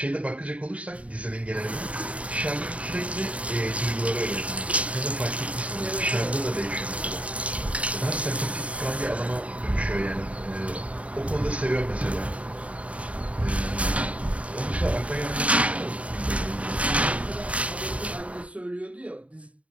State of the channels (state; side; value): late; left; 0.065 ms